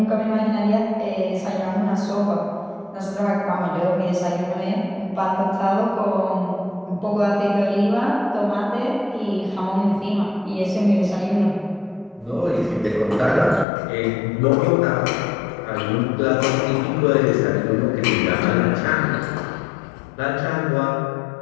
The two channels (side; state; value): right; drops out; at 13.7 s